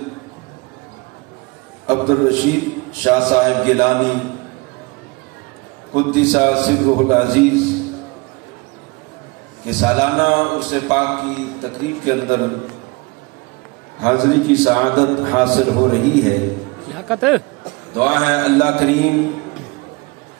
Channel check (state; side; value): quieter; left; 25.8 dB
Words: عبدالرشید شاہ صاحب گیلانی قدس سرہ العزیز کے سالانہ عرس پاک کی تقریب کے اندر حاضری کی سعادت حاصل ہو رہی ہے۔ دعا ہے اللہ کریم